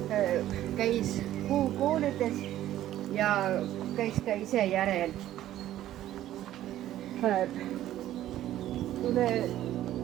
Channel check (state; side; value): quieter; left; 13.1 dB